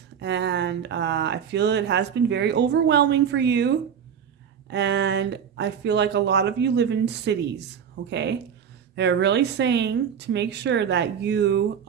and I feel it has been very overwhelming for you. And I feel like a lot of you live in cities, okay? They're really saying to make sure that you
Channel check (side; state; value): left; quieter; 7.9 dB